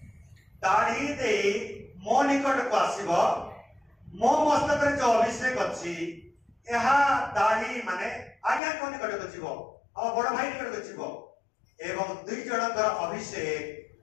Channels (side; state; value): right; drops out; at 8.6 s